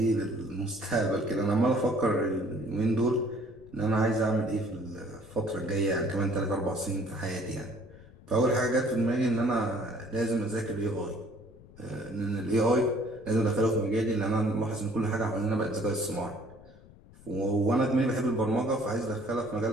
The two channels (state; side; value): noise; left; rumble, 23 dB below the sound